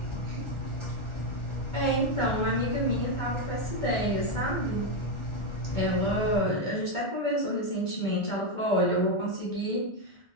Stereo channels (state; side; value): late; right; 1.4 ms